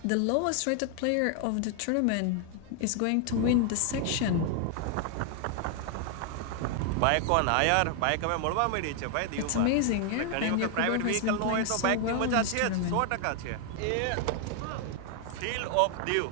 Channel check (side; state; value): both; different; correlation 0.00